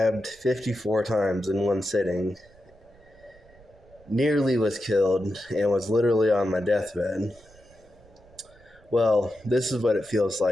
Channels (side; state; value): right; noise; rumble, 27 dB below the sound